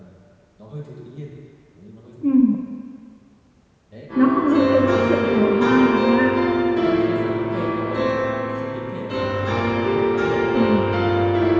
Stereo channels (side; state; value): both; identical; correlation 1.00